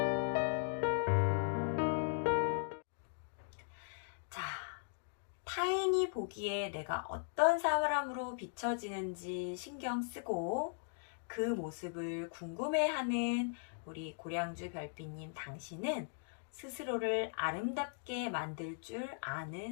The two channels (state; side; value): silent; right; digital silence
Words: 자, 타인이 남이 보기에 내가 어떤 사람으로 비춰지는지 신경 쓰고 그 모습을 궁금해하는 우리 고량주 별빛님 당신은 스스로를 아름답게 만들 줄